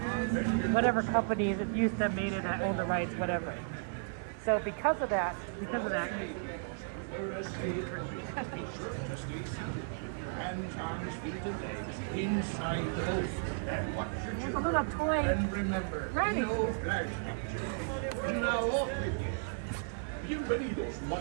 whatever companies it used to made it that owned the rights, whatever. So because of that, Hands, arms, feet, and legs inside the boat. And watch your there's a little toy. And remember, Ready. no flash pictures. Now off with you. You ready those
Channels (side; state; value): left; silent; digital silence